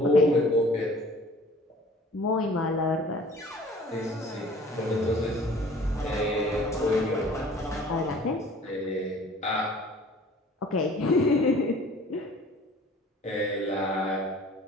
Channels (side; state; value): both; normal; correlation 0.49